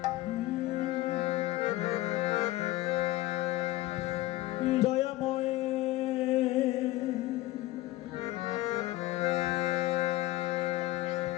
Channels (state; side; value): quieter; right; 17.4 dB